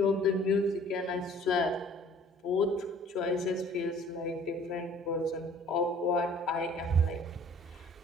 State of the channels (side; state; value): both; normal; correlation 0.53